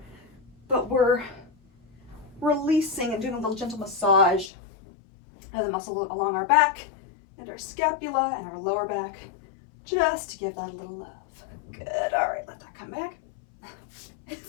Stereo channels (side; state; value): right; drops out; at 4.5 s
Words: but we're releasing and doing a little gentle massage of the muscle along our back and our scapula and our lower back, just to give that a little love. Good. All right, let that come back.